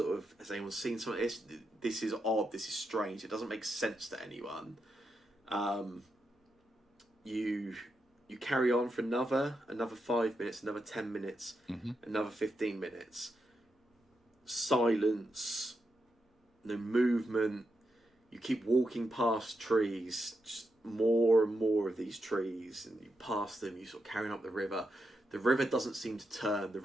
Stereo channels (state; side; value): normal; both; correlation 0.85